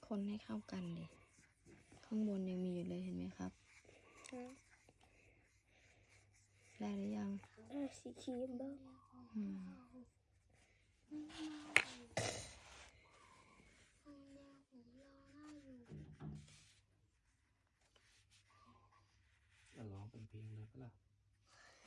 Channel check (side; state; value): both; identical; correlation 1.00